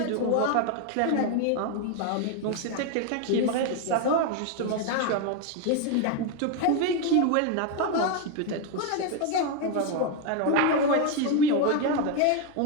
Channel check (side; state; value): both; different; correlation 0.01